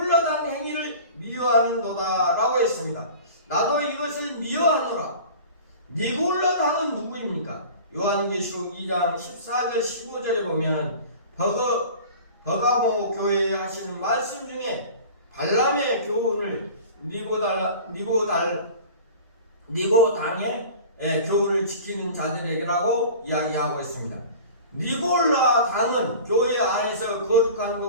행위를 미워하는도다 라고 했습니다. 나도 이것을 미워하노라. 니골라당은 누구입니까? 요한계시록 2장 14절 15절에 보면 버가모 교회에 하시는 말씀 중에 발람의 교훈을 니고당의 교훈을 지키는 자들에게라고 이야기하고 있습니다. 니골라 당은 교회 안에서 거룩한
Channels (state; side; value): inverted; both; correlation -0.40